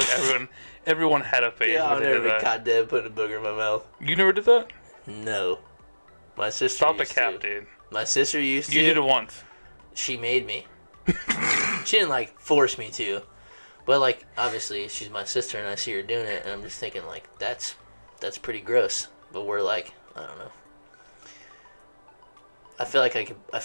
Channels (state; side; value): inverted; both; correlation -1.00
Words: everyone had a phase Yeah, where I've they never did been that. caught dead putting a booger in my mouth. You never did that? No. My sister Stop the used cap, to. dude. My sister used to. You did it once. She made me. She didn't, like, force me to. But, like, obviously, she's my sister, and I see her doing it, and I'm just thinking, like, that's pretty gross. But we're like, I don't know. I feel